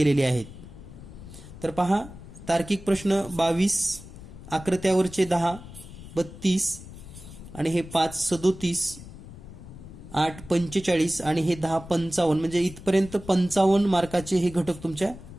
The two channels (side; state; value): left; noise; rumble, 15 dB below the sound